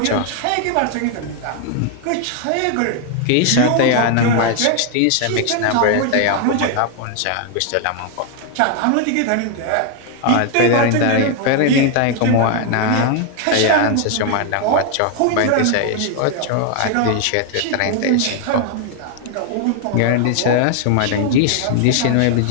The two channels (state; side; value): different; both; correlation 0.00